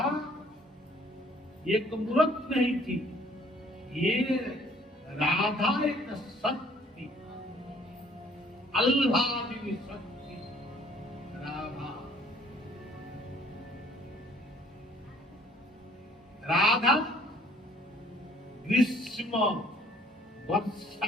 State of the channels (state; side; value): normal; both; correlation 0.58